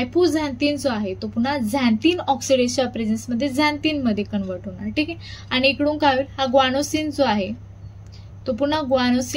जो आहे तो पुन्हा झॅन्थिन ऑक्सिडेजच्या प्रेझेन्समध्ये झॅन्थिन मध्ये कन्वर्ट होणार, ठीक आहे. आणि इकडून काय होईल, हा ग्वानोसिन जो आहे तो पुन्हा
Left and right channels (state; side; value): identical; both; correlation 1.00